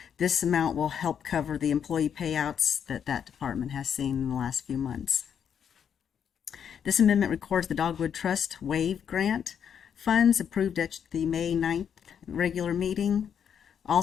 This amount will help cover the employee payouts that department has seen in the last few months. This amendment records the Dogwood Trust WAVE grant funds approved at the May 9th regular meeting.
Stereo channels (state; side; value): quieter; right; 8.1 dB